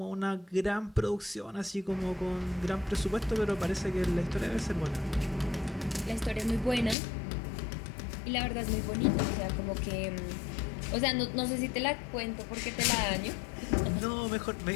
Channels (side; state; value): right; drops out; at 7.0 s